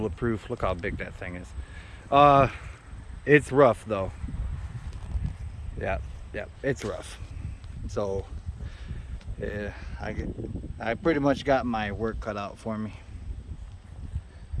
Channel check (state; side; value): identical; both; correlation 1.00